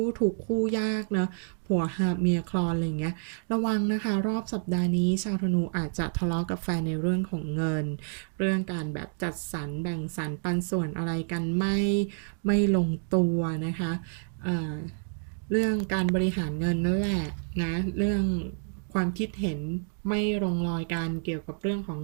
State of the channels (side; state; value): left; silent; digital silence